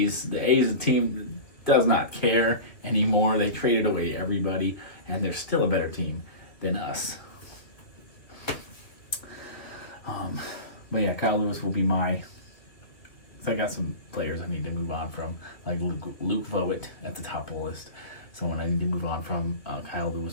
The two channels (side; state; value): right; late; 2.2 ms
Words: The A's is a team that does not care anymore. They traded away everybody, and they're still a better team than us. But yeah, Kyle Lewis will be my... I got some players I need to move on from, like Luke Voigt at the top of the list. Someone I need to move on from. Kyle